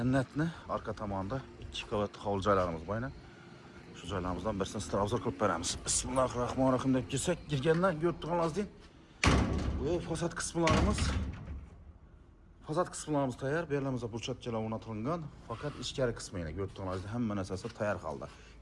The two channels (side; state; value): both; identical; correlation 1.00